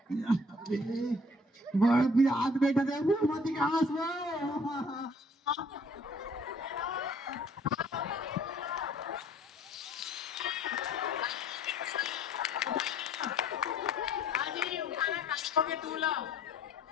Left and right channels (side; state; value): both; normal; correlation 0.56